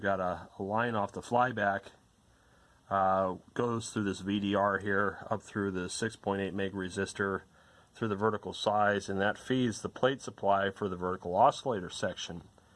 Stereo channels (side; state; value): both; identical; correlation 1.00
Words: a line off the flyback, goes through this VDR here, up through the 6.8 meg resistor, through the vertical size, and that feeds the plate supply for the vertical oscillator section.